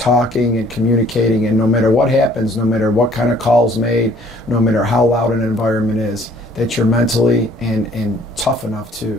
and communicating, and no matter what happens, no matter what kind of calls made, no matter how loud an environment is, that you're mentally and tough enough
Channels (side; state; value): both; normal; correlation 0.58